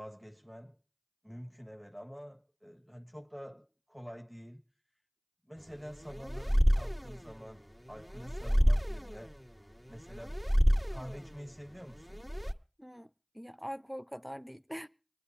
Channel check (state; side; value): identical; both; correlation 1.00